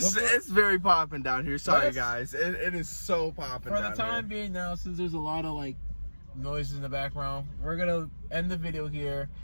very popping down here. Sorry, Let's- guys. It is so popping For down the time here. being now, since there's a lot of like noises in the background, we're gonna end the video here.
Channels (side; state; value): both; inverted; correlation -1.00